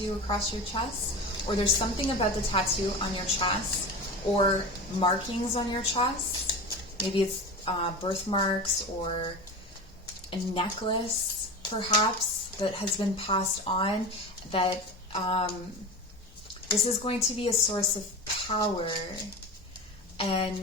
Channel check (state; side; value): normal; both; correlation 0.28